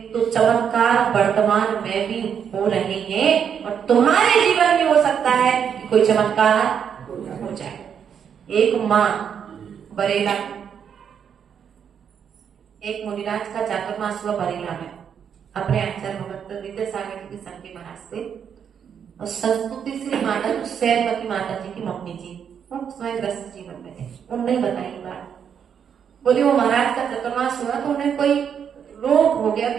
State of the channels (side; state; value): left; quieter; 7.8 dB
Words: तो चमत्कार वर्तमान में भी हो रहे हैं और तुम्हारे जीवन में हो सकता है कि कोई चमत्कार हो जाए। एक माँ बरेला, एक मुनिराज का चातुर्मास हुआ बरेला में अपने आचार्य भगत विद्यासागर जी के संग के महाराज से, और संस्तुति श्री माता सैलवती माता जी की मम्मी जी, वो स्वयं ग्रस्त जीवन में थे। उन्होंने बताई बात, बोली वो महाराज का चतुर्मास हुआ तो उन्हें कोई रोग हो गया,